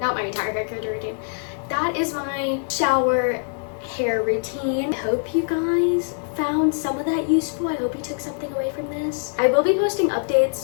my entire hair care routine. That is my shower hair routine. I hope you guys found some of that useful. I hope you took something away from this. I will be posting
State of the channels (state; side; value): silent; right; 63 dB below the other